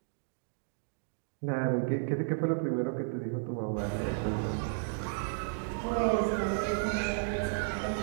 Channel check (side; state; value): left; silent; digital silence